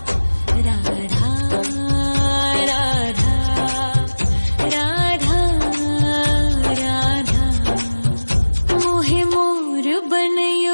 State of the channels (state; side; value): inverted; both; correlation -1.00